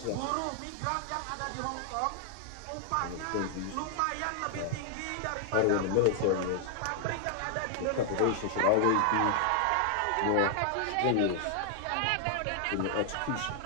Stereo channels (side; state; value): both; different; correlation 0.00